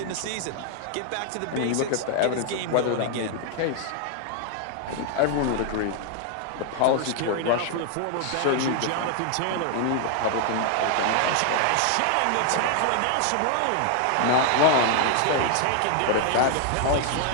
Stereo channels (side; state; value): both; different; correlation 0.00